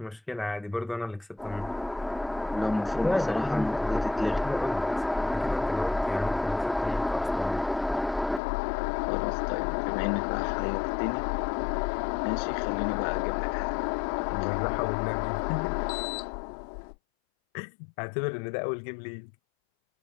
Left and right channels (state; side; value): drops out; right; at 8.4 s